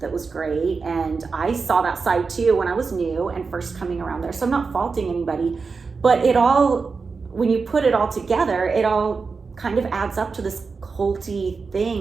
was great. And I saw that side too when I was new and first coming around there. So I'm not faulting anybody, but it all, when you put it all together, it all kind of adds up to this culty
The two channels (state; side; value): quieter; left; 4.7 dB